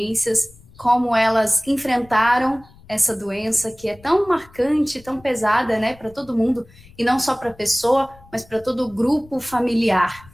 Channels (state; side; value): noise; left; rumble, 25 dB below the sound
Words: como elas enfrentaram essa doença que é tão marcante, tão pesada, né, para todo mundo, e não só para a pessoa, mas para todo o grupo familiar.